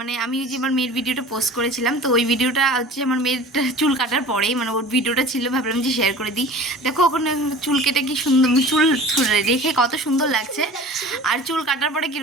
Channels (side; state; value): both; normal; correlation 0.41